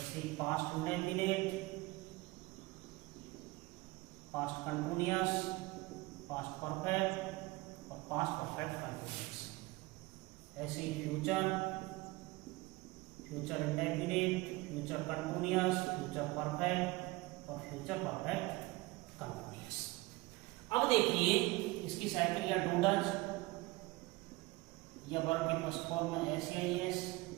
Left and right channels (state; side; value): quieter; left; 21.8 dB